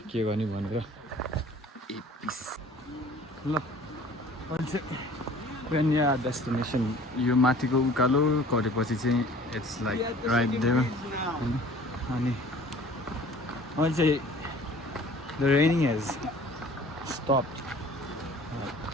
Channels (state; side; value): normal; both; correlation 0.49